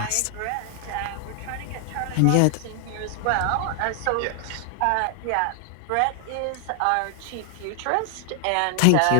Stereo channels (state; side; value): different; both; correlation 0.00